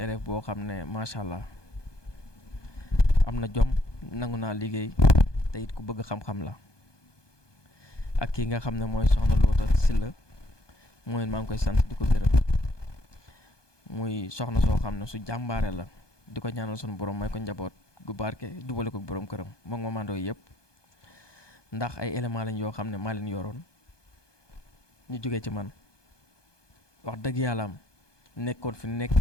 boo xam ne macha allah am na jom nangu naa liggéey te it ku bëgg xam-xam la ak kii nga xam ne mooy soxna Loota Silla mooy maa ngi koy sant di ko gërëm muy soxna soo xam ne su jàmbaare la di ko ñaanal sunu borom may ko njaboot gu barke jubale ko borom këram moom Maman Ndoye yëpp ndax ay éléments lañ yoo xam ne maa leen yoroon ñu jógee ci man wax dëgg yàlla am nekkoon fi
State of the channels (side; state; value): right; late; 1.2 ms